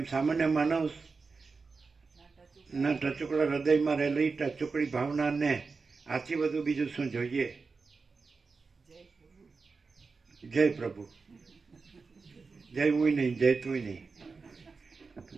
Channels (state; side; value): quieter; left; 4.5 dB